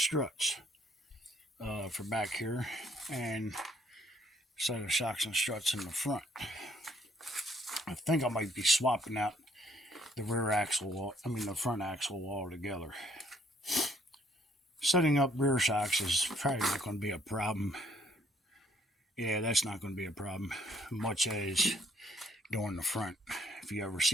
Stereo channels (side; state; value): both; normal; correlation 0.66